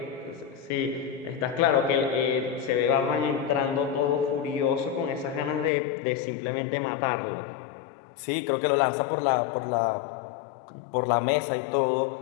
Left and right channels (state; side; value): drops out; right; at 5.7 s